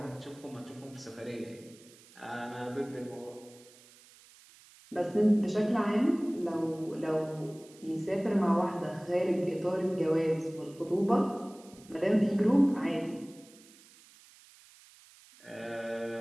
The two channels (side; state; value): right; noise; hiss, 24 dB below the sound